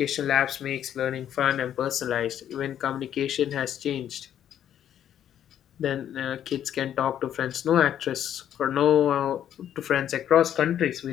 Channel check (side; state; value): right; quieter; 10.3 dB